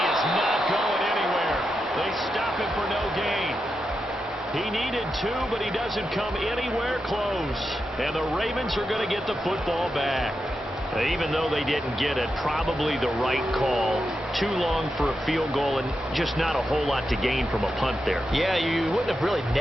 is not going anywhere. They stop him for no gain. He needed 2, but he doesn't come anywhere close. And the Ravens are going to get the football back. Even though they didn't get it, probably the right call. Too long for a field goal and just not a whole lot to gain from a punt there. Yeah, you wouldn't have really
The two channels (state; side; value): normal; both; correlation 0.87